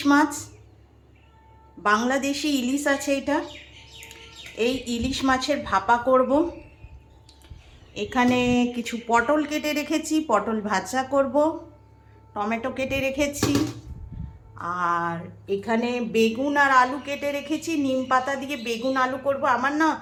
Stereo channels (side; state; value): both; identical; correlation 1.00